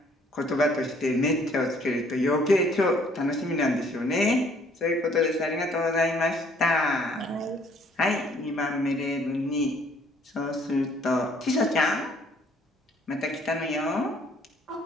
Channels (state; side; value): normal; both; correlation 0.61